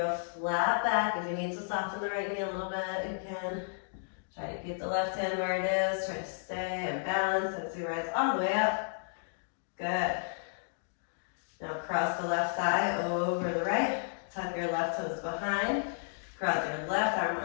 a flat back. If you need to soften the right knee a little bit, you can. Try to keep the left hand where it is. Try to stay and balance as you rise all the way up. Good. Now cross the left thigh over the right. Tuck your left toes behind. Cross your left arm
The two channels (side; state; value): right; silent; digital silence